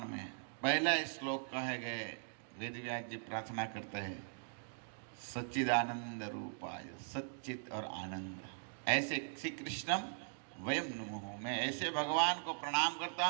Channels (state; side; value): silent; left; digital silence